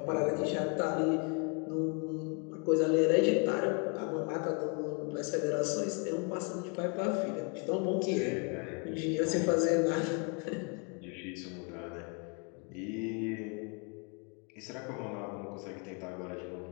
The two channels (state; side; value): quieter; right; 35.2 dB